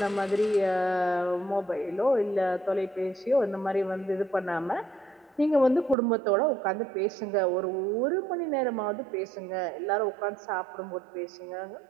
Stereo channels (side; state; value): left; drops out; at 6.0 s